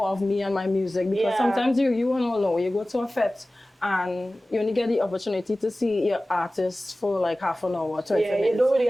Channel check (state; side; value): normal; both; correlation 0.97